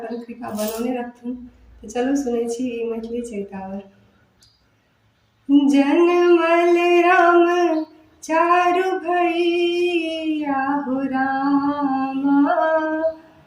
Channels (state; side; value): identical; both; correlation 1.00